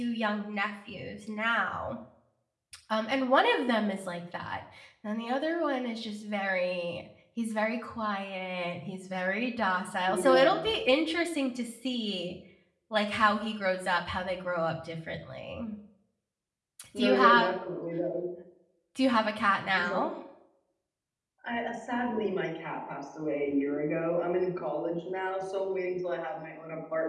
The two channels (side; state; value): both; identical; correlation 1.00